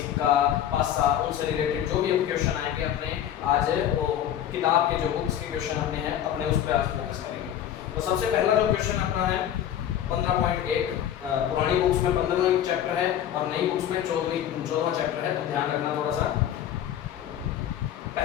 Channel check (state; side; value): quieter; right; 10.6 dB